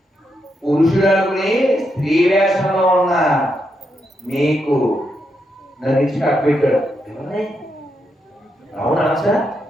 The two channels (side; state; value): both; normal; correlation 0.82